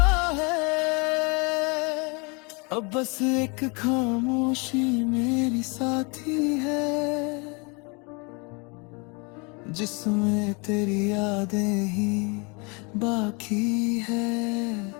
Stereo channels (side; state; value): right; quieter; 30.9 dB